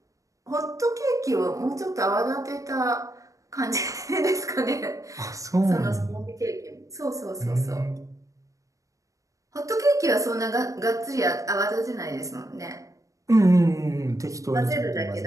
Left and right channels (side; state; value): left; late; 0.16 ms